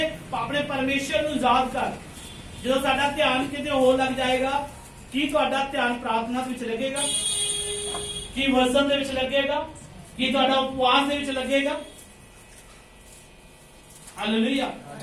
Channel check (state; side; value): identical; both; correlation 1.00